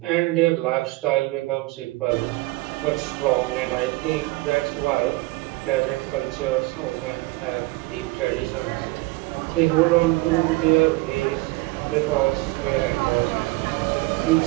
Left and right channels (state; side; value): quieter; left; 21.4 dB